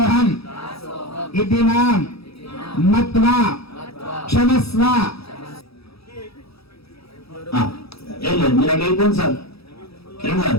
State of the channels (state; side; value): late; right; 0.77 ms